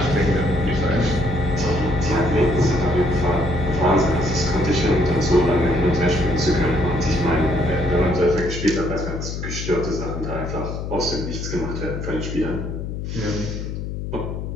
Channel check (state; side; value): noise; left; hum, 5 dB below the sound